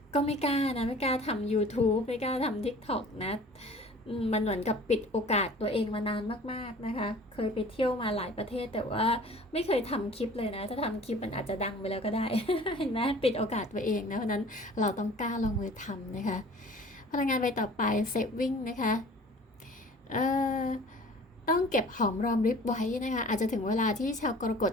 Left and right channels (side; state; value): both; normal; correlation 0.47